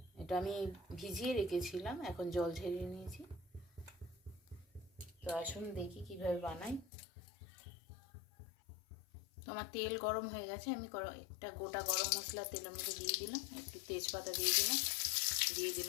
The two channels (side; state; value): right; drops out; at 6.9 s